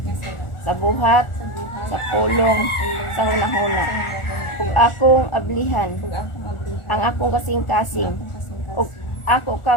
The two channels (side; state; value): right; late; 1.4 ms